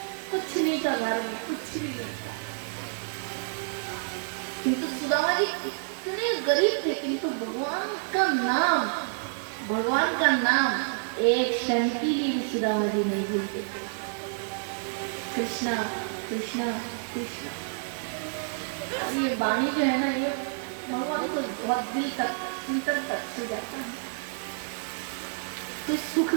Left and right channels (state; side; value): silent; left; 59 dB below the other